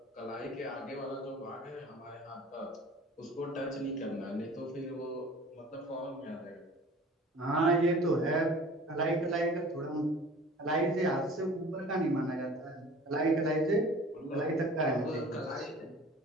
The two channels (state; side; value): normal; both; correlation 0.45